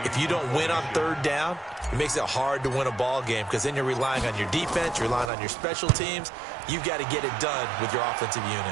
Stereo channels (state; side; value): drops out; left; at 5.3 s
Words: if you don't win on 3rd down, it makes it hard to win a ball game because then you're relying on your defense, you're relying on your special teams. You've got to get it done with your offensive